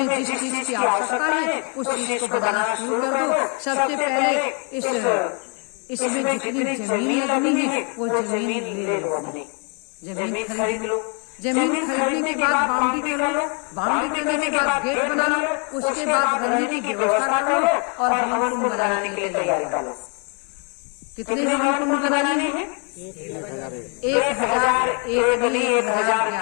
जिस चीज की आवश्यकता है उस चीज को बनाना शुरू कर दो। सबसे पहले इसमें जितनी जमीन लगनी है वो जमीन ले लो, अपनी जमीन खरीद लो। जमीन खरीदने के बाद बाउंड्री कर लो, बाउंड्री करने के बाद गेट बना लो, उसके बाद रहने की व्यवस्था कर लो और हवन कुंड बनाने के लिए तैयारी कर लो। कितने हवन कुंड बनाने हैं? 1000, 1 नहीं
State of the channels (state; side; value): quieter; right; 37.4 dB